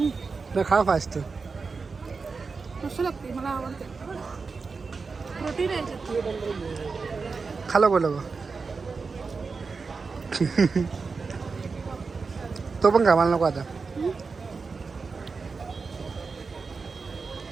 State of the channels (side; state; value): left; quieter; 4.6 dB